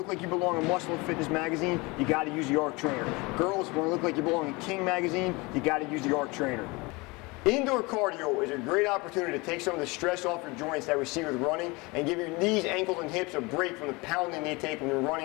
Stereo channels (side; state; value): right; quieter; 25.3 dB